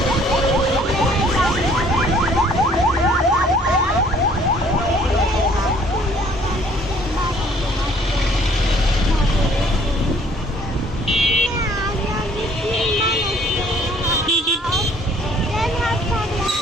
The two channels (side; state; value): both; normal; correlation 0.59